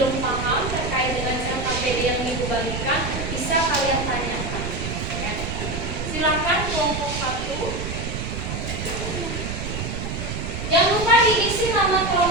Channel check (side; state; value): right; noise; rumble, 5 dB below the sound